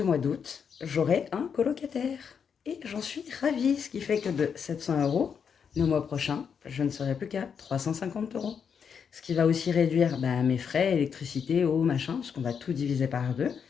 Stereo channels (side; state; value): right; quieter; 6.9 dB